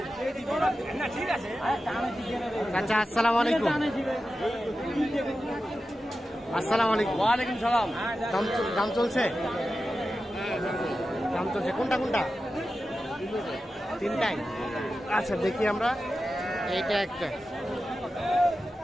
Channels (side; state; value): both; normal; correlation 0.92